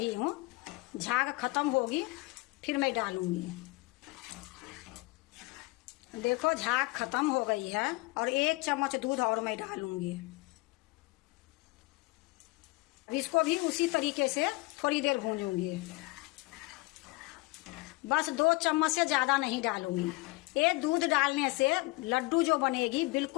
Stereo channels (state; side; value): quieter; right; 24.0 dB